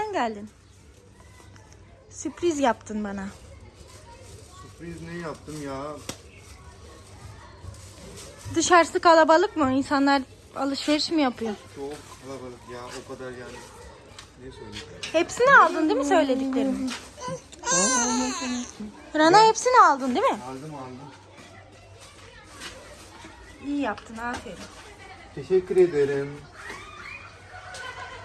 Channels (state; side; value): identical; both; correlation 1.00